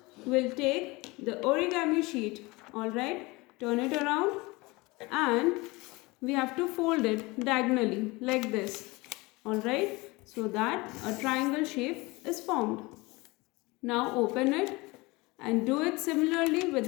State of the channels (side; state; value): right; quieter; 23.4 dB